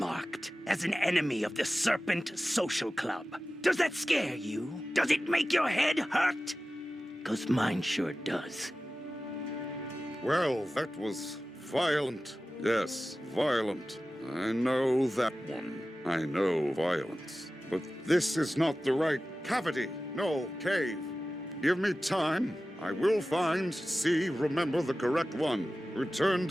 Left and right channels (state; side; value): normal; both; correlation 0.95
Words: as an enemy of the Serpent Social Club. Does that scare you? Does it make your head hurt? 'Cause mine sure does. Well, that was violent. Yes, violent. I know that one. I know violence. But this is not the right cavity. No, cave. Give me time. I will find, see, remember the correct one. Return